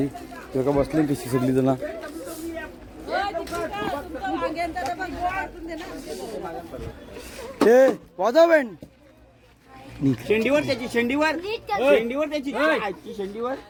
तेव्हा बसले कशी सगळी जण. हे वाजव बँड शेंडीवर त्याची शेंडीवर त्याची शेंडीवर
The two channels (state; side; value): identical; both; correlation 1.00